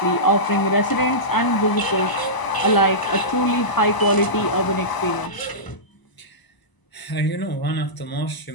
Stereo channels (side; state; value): right; late; 1.0 ms